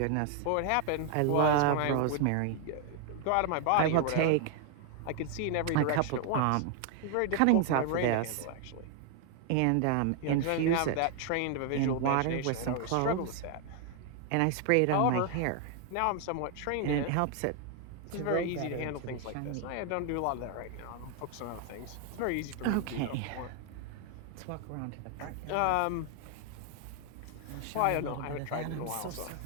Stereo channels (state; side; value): different; both; correlation 0.00